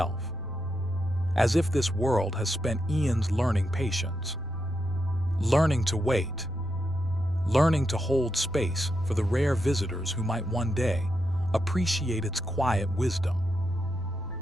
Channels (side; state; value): right; noise; rumble, 15 dB below the sound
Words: As if this world has spent eons learning patience. Learning to wait. Learning to hold space for the rare visitors who might one day appreciate its quiet wisdom.